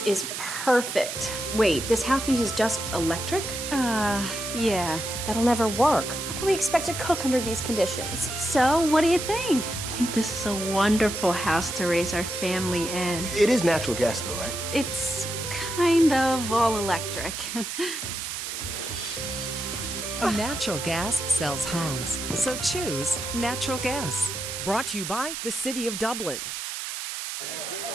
is perfect. Wait, this house uses just electric? Yeah. That'll never work. How can we expect to cook under these conditions? So what do you think? I think this is a wonderful house to raise our family in. It is natural gas though, right? It's kind of all electric. Natural gas sells homes, so choose natural gas. Brought to you by the City of Dublin.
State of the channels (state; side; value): noise; right; hiss, 6 dB below the sound